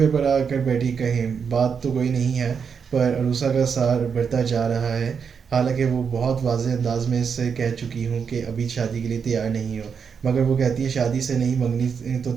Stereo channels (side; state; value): left; quieter; 6.4 dB